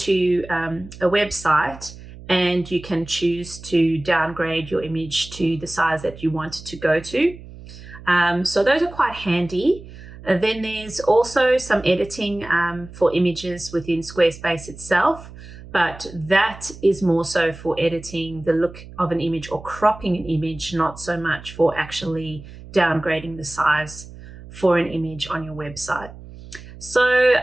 a website, and you can choose to downgrade your image to the size that you want it to go to. So those are quite handy. Then there's also some editing for images within Squarespace itself, but that is more so for editing the look of an image or cropping an image, not so much for actually downgrading the size for an image on your website. So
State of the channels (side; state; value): right; noise; hum, 16 dB below the sound